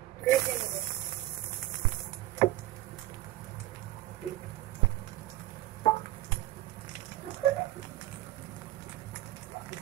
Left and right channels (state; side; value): quieter; left; 15.7 dB